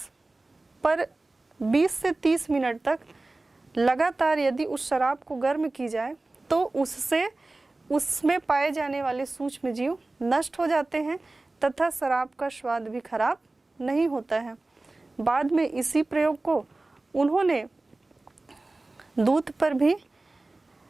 पर 20 से 30 मिनट तक लगातार यदि उस शराब को गर्म की जाए तो उससे उसमें पाए जाने वाले सूक्ष्म जीव नष्ट हो जाते हैं तथा शराब का स्वाद भी खराब नहीं होता है। बाद में इसी प्रयोग को उन्होंने दूध पर भी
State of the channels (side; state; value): left; quieter; 3.1 dB